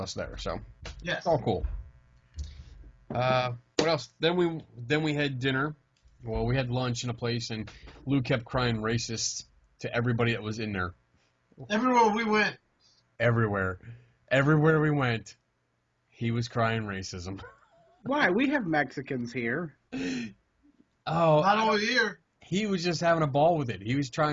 there, so yes. It's all cool. What else? Then we had dinner. Well, we had lunch in a place, and Lou kept crying racist to everybody that was in there. Everywhere we went. Everywhere we went, he was crying racism. Why? We have Mexicans here. Oh, Not over here. He was just having a ball with it. He was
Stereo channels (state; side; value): identical; both; correlation 1.00